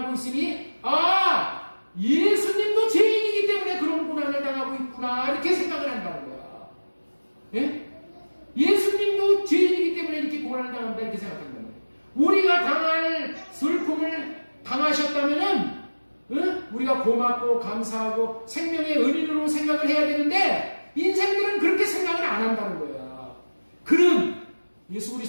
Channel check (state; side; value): inverted; both; correlation -1.00